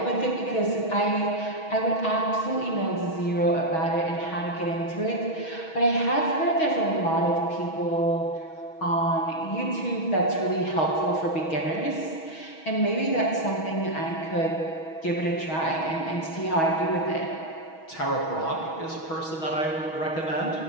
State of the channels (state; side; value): late; right; 6.3 ms